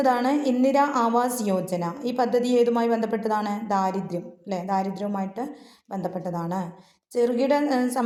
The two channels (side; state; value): both; identical; correlation 1.00